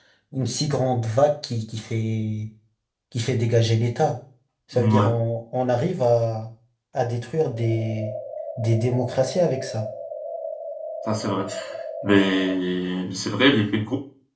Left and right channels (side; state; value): both; identical; correlation 1.00